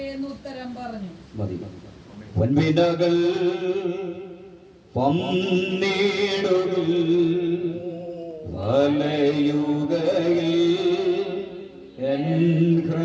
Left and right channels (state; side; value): identical; both; correlation 1.00